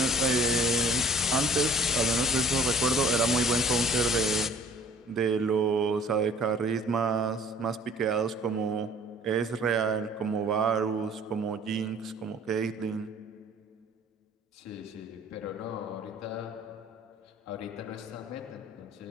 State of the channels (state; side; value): normal; both; correlation 0.50